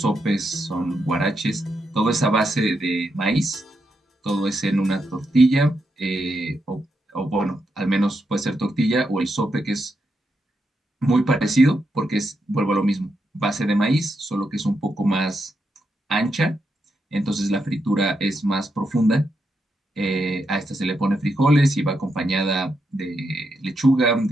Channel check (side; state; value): both; normal; correlation 0.83